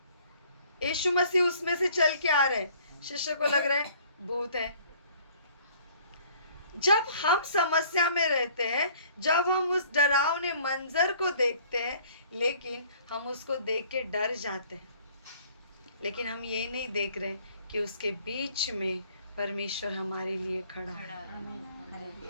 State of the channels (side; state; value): both; inverted; correlation -0.56